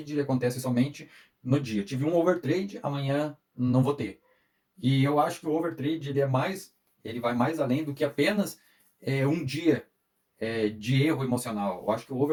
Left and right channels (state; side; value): identical; both; correlation 1.00